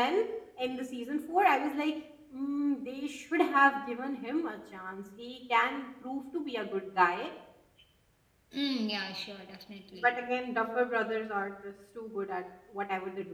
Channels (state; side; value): identical; both; correlation 1.00